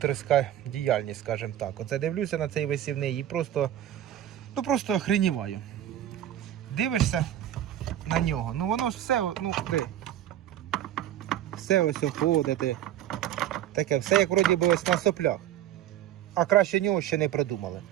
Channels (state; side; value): quieter; left; 11.8 dB